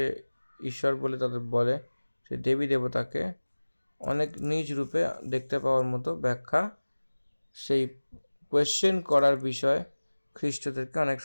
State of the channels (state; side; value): inverted; both; correlation -1.00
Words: ঈশ্বর বলে তাদের বলে সেই দেবী দেবতাকে অনেক নিজ রূপে দেখতে পাওয়ার মতো ব্যাখ্যা সেই কোয়েশ্চেন করার বিষয় খ্রিস্টদেরকে অনেক